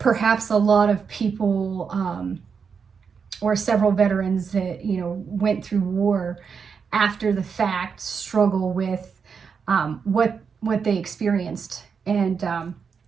a lot of people, or several veterans that, went through war after the fact, struggle with what they experienced. And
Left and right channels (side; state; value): left; quieter; 6.1 dB